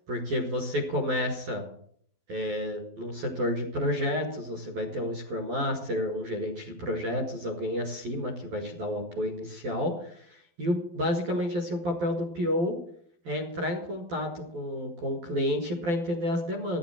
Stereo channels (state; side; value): late; left; 12 ms